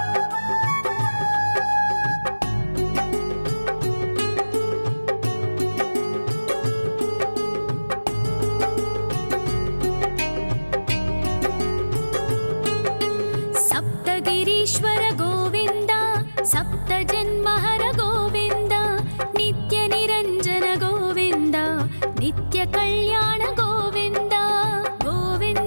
సప్తగిరీశ్వర గోవింద సప్త జన్మహర గోవింద నిత్య నిరంజన గోవింద నిత్య కళ్యాణ గోవింద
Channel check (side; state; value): both; inverted; correlation -1.00